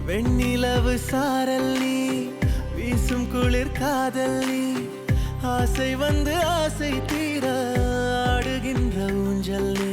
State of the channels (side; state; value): both; identical; correlation 1.00